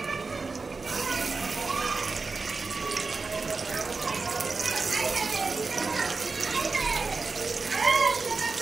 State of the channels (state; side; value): quieter; left; 4.2 dB